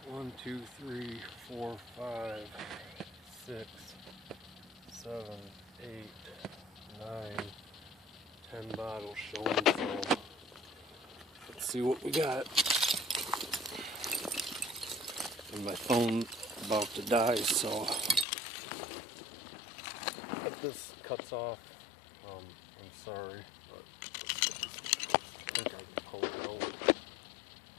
1, 2, 3, 4, 5, 6, 7, 8, 9, 10 bottles showing, so let's see what we got. And my phone's about to die, so if this cuts off, I'm sorry, but let's get this one first. I think I can pull it out.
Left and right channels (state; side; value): drops out; right; at 18.2 s